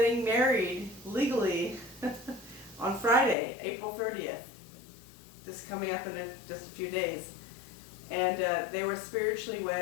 married legally on Friday, April 30th. Just coming up in just a few days. And they were spiritually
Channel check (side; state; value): right; drops out; at 3.4 s